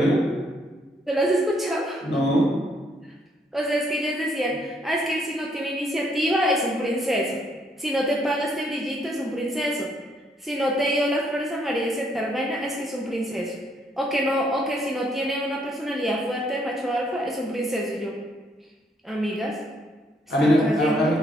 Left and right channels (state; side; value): normal; both; correlation 0.70